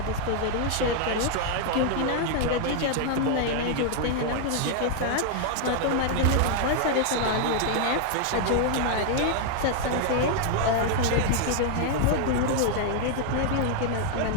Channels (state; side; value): different; both; correlation 0.00